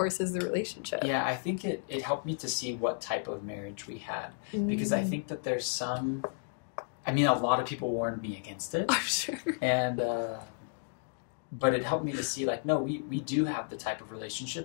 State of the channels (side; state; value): right; silent; digital silence